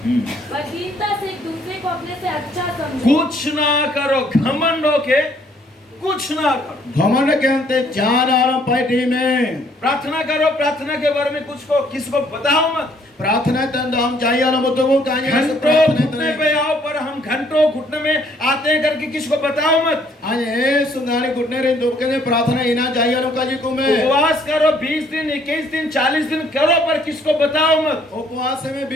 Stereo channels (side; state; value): both; normal; correlation 0.64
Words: पर दीनता से एक दूसरे को अपने से अच्छा समझो। कुछ ना करो, घमंड होके कुछ ना करो। घमंड के अंते जान आराम पार्टी में प्रार्थना करो, प्रार्थना के बारे में कुछ को किसी को बताओ मत। प्रार्थना तंद हम चाहिए वाला मुद्दों को कहानी घंटों घुटने पे आओ, पर हम घंटों घुटने में आते हैं करके किसी को बताओ मत। आज ए सुंगारी घुटने रे दो के प्रार्थना इना चाहिए वालों का जी को में उपवास करो 20 दिन, 21 दिन, 40 दिन करो, पर किसको बताओ मत। उपवास में